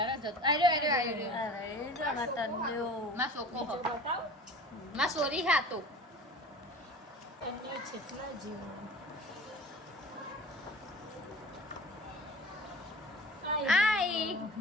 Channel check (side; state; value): both; normal; correlation 0.40